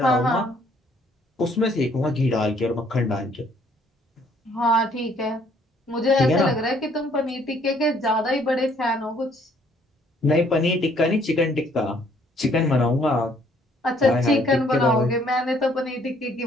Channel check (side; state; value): both; normal; correlation 0.63